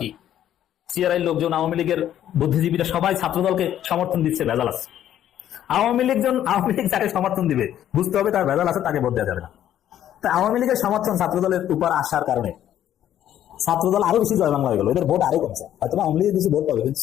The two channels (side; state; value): right; quieter; 11.3 dB